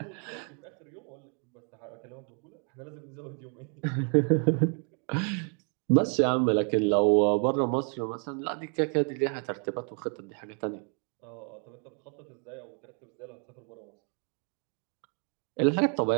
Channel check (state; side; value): quieter; left; 39.3 dB